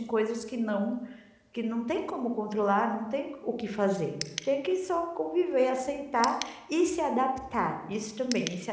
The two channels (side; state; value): both; identical; correlation 1.00